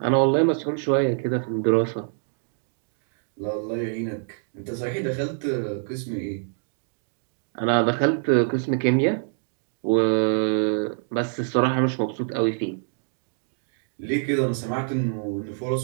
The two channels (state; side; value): silent; left; digital silence